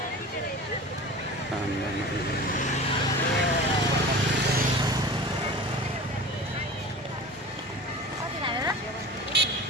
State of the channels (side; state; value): both; normal; correlation 0.36